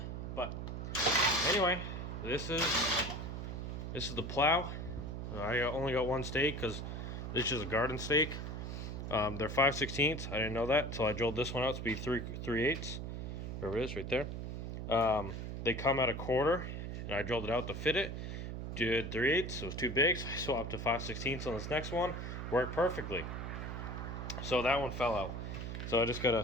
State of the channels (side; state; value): right; noise; hum, 5 dB below the sound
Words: But anyway, this is the plow. I only got one stake because this is a garden stake. They're 5/16. I didn't know that until I drilled this one out to be 3/8. There it is, right there. They come at a quarter, and I drilled it out to fit it. Did 3/8. It was too big, so I swapped to 5/16 on this next one. Worked perfectly. So that one fell out. So I just gotta